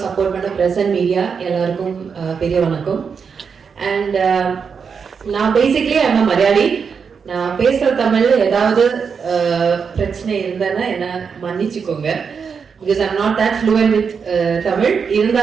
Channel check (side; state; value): left; quieter; 6.1 dB